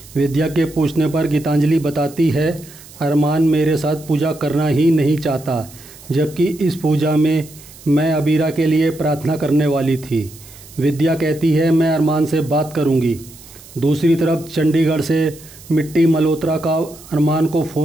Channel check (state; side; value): noise; right; hiss, 20 dB below the sound